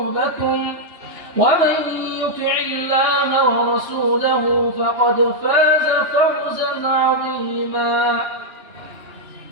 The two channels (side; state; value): left; late; 3.2 ms